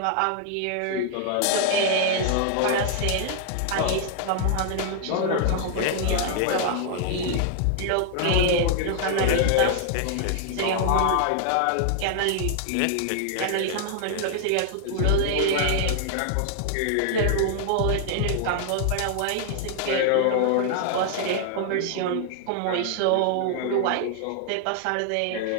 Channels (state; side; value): different; both; correlation 0.00